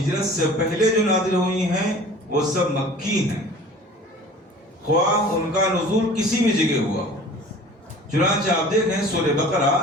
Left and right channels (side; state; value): both; normal; correlation 0.44